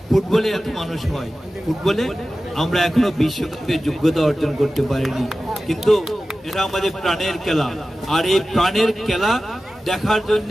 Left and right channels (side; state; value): both; normal; correlation 0.95